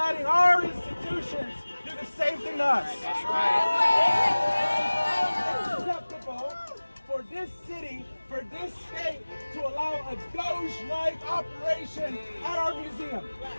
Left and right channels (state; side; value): inverted; both; correlation -1.00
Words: our institutions do the same thing to us? That's right. It's unacceptable for this city, for this state, to allow a Doge-like operation at our museum.